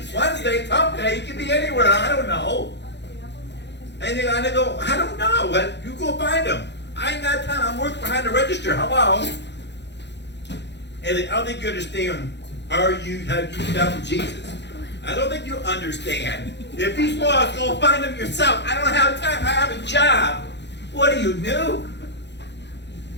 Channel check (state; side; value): late; right; 0.51 ms